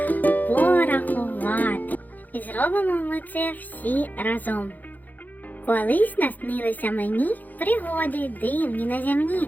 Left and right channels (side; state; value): right; late; 0.083 ms